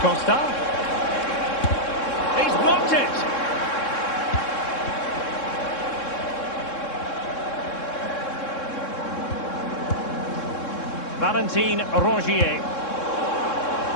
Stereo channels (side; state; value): right; late; 3.7 ms